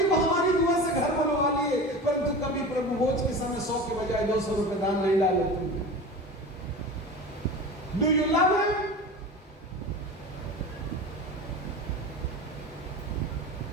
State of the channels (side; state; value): both; normal; correlation 0.32